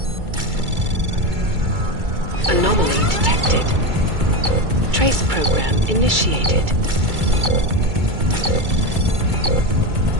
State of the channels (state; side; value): late; left; 2.3 ms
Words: Anomaly detected. Trace program initiated.